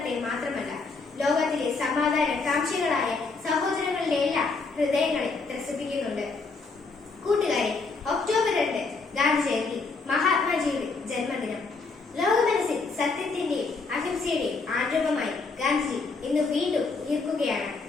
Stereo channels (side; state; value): right; quieter; 4.1 dB